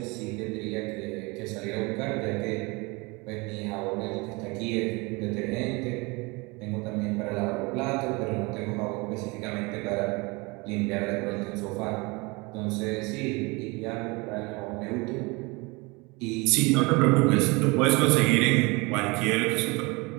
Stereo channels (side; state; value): left; quieter; 26.5 dB